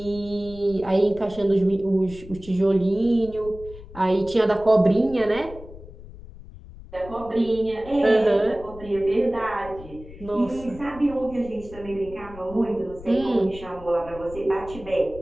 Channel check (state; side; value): noise; left; rumble, 17 dB below the sound